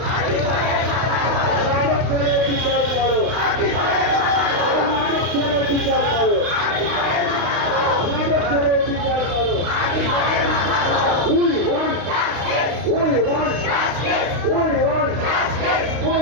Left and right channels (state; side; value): late; left; 32 ms